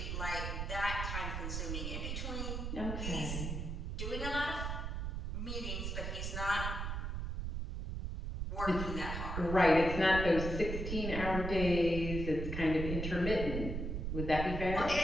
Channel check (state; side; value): noise; right; rumble, 3 dB below the sound